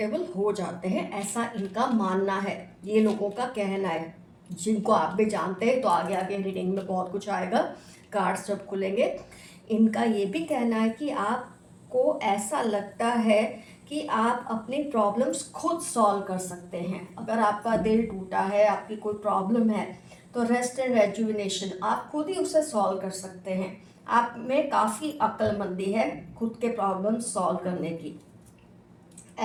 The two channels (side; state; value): both; identical; correlation 1.00